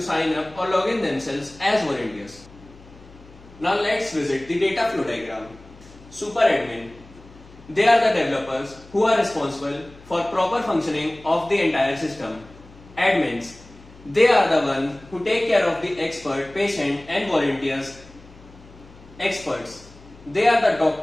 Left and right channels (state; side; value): noise; left; hum, 22 dB below the sound